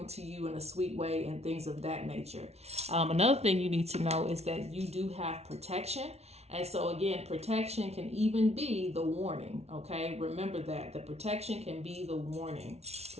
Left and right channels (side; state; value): left; late; 0.31 ms